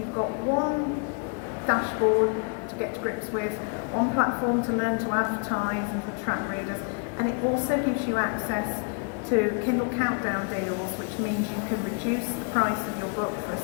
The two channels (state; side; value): quieter; right; 38.6 dB